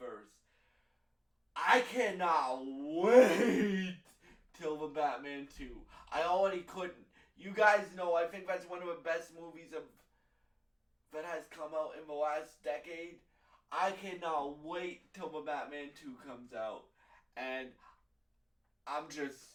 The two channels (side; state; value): both; identical; correlation 1.00